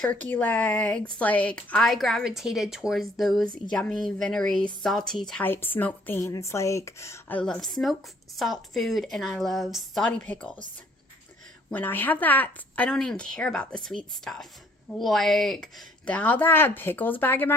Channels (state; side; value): normal; both; correlation 0.61